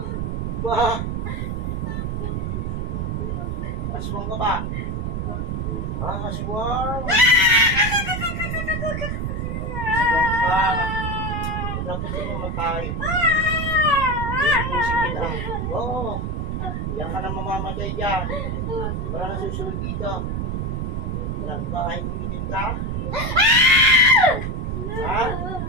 Ba? Aswang ka ba? Aswang. Aswang ka. Dapat ka mamatay. Inutusin kita. Oo. Yan ka na mamamatay dyan. Wala na susunod dito. Ilang bahay kumitin ka? Ha?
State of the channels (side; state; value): right; noise; rumble, 2 dB below the sound